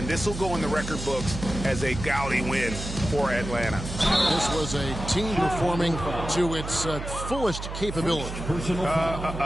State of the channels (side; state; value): right; noise; hum, 7 dB below the sound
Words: this will go in the record books as a gaudy win for Atlanta. This was a team performing to its fullest capability.